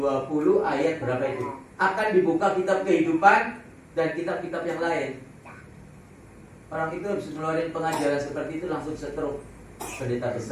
ayat berapa itu? Akan dibuka kitab kehidupan dan kitab-kitab yang lain. Orang itu habis ngeluarin pengajaran seperti itu langsung setruk pendeta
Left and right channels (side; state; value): both; identical; correlation 1.00